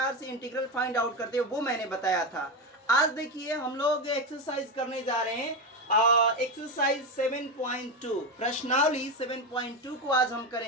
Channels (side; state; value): both; normal; correlation 0.14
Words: से इंटीग्रल फाइंड आउट करते हैं वो मैंने बताया था। आज देखिए हम लोग एक्सरसाइज करने जा रहे हैं, एक्सरसाइज 7.2 प्रश्नावली 7.2 को आज हम